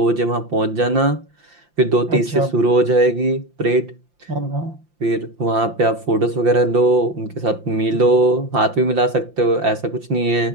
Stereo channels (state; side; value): late; left; 5.8 ms